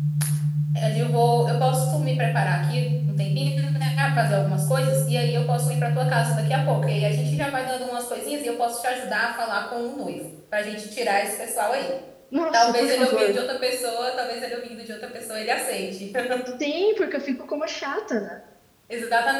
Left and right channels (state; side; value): identical; both; correlation 1.00